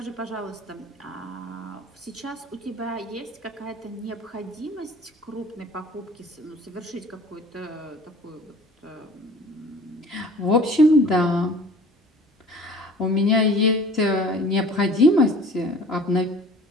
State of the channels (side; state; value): both; normal; correlation 0.46